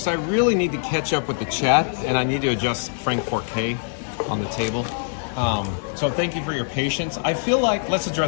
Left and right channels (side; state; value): right; silent; 61 dB below the other